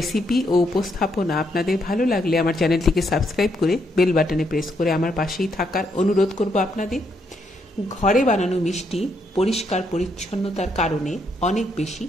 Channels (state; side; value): normal; both; correlation 0.76